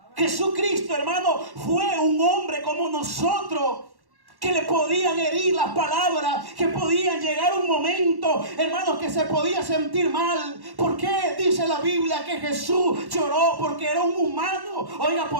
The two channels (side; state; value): left; late; 1.1 ms